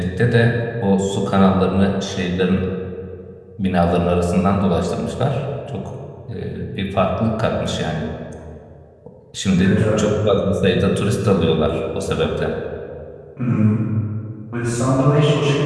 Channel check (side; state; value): both; identical; correlation 1.00